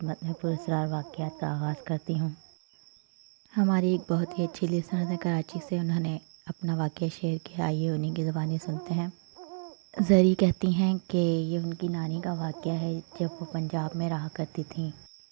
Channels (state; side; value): silent; left; 57 dB below the other